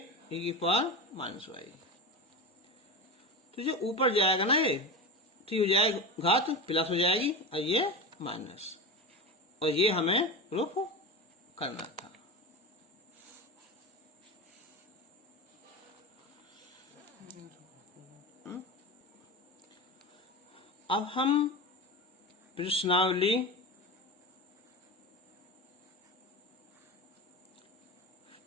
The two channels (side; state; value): both; normal; correlation 0.23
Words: e की पावर माइनस y, तो जो ऊपर जाएगा ना ये तो हो जाएगा घात प्लस हो जाएगी और ये माइनस, और ये हमें प्रूफ करना था। अब हम प्रश्नावली